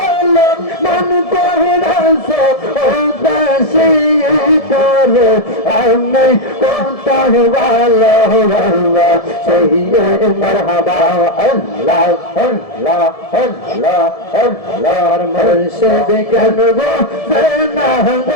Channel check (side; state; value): right; late; 1.7 ms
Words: মন কহিরাছে ও দাসী তোরে আমি কোথায় ভালো বাবা সেই মারহাবা আল্লাহ আল্লাহ আল্লাহ আল্লাহর মুর্শিদ কেনবো না